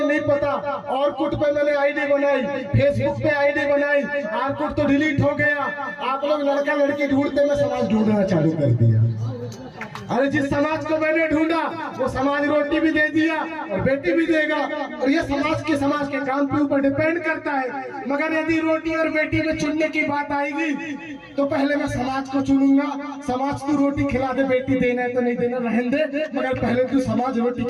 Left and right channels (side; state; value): both; identical; correlation 1.00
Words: नहीं पता, ऑरकुट पे मैंने आईडी बनाई, फेसबुक पे आईडी बनाई, ऑरकुट तो डिलीट हो गया। आप लोग लड़का लड़की ढूंढते, मैं समाज ढूंढना चालू कर दिया। अरे जिस समाज को मैंने ढूंढा वो समाज रोटी भी दे दिया और बेटी भी देगा, और ये समाज के काम के ऊपर डिपेंड करता है। मगर यदि रोटी और बेटी में चुनने की बात आएगी तो पहले मैं समाज को चुनूंगा। समाज को रोटी खिला दे, बेटी देना है तो नहीं देना रहने दे, मगर पहले तू समाज रोटी